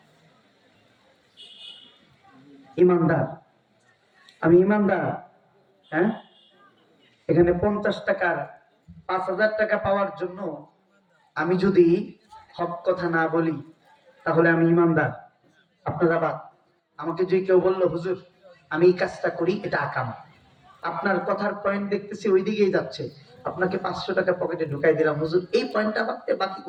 ইমানদার, আমি ইমানদার। হ্যাঁ, এখানে 50 টাকার 5000 টাকা পাওয়ার জন্য আমি যদি হক কথা না বলি, তাহলে আমি ইমানদার। আপনারা বাদ, আমাকে যে কেউ বললো হুজুর আমি এই কাজটা করি, এটা আকাম, আপনার কথার পয়েন্ট দেখতেছি ওই দিকেই যাচ্ছে, আপনাকে 500 টাকা পকেটে ঢুকাই দিলাম, হুজুর এই পয়েন্টটা বাদতে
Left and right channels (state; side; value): identical; both; correlation 1.00